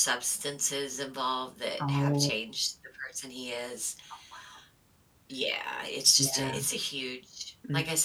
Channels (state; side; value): identical; both; correlation 1.00